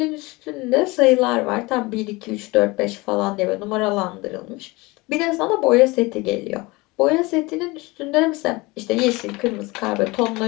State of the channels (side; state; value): right; quieter; 23.3 dB